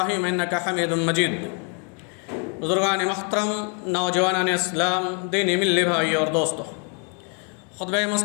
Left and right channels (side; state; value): right; quieter; 38.8 dB